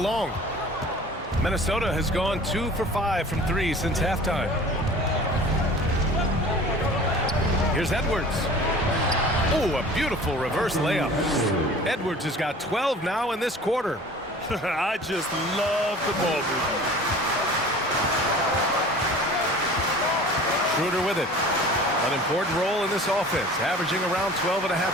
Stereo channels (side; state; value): both; normal; correlation 0.44